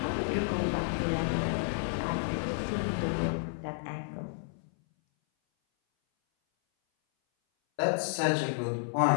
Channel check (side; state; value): right; silent; 57 dB below the other